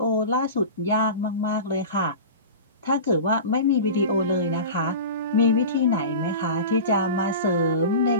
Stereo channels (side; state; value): both; inverted; correlation -0.32